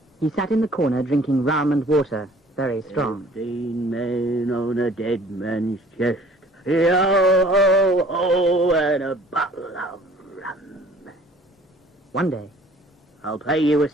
he sat in the corner drinking rum and water, very strong. 15 men on a dead man's chest. Yo-ho-ho, and a bottle of rum. One day, I'll pay you a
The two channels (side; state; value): both; normal; correlation 0.53